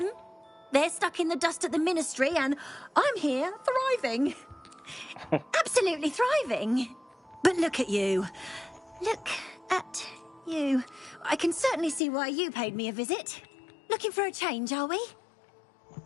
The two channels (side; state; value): right; drops out; at 12.0 s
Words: They're stuck in the dust at the ministry, and I'm here, thriving. Absolutely thriving. But look at you. Look at you. I can certainly see why you paid me a visit. Looking for a change, are we?